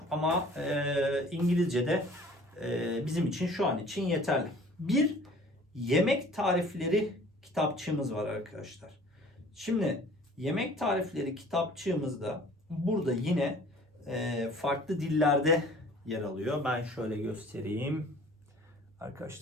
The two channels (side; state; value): both; normal; correlation 0.50